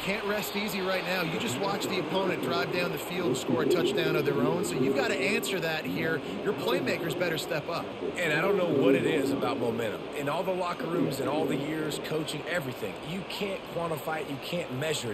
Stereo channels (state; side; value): identical; both; correlation 1.00